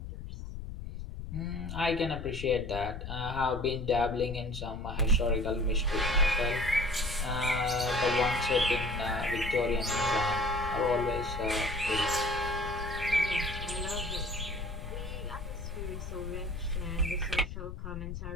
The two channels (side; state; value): left; noise; rumble, 8 dB below the sound